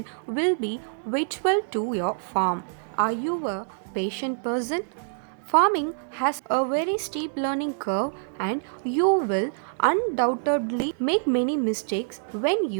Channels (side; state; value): left; silent; 61 dB below the other